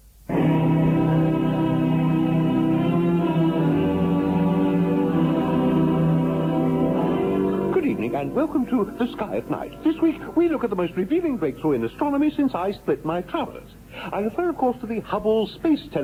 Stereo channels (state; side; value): identical; both; correlation 1.00